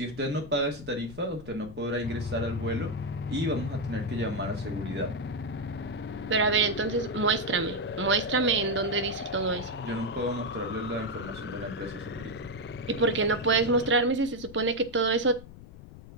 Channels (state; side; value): noise; left; rumble, 16 dB below the sound